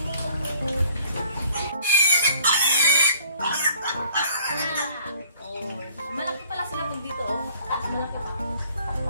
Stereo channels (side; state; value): both; inverted; correlation -0.57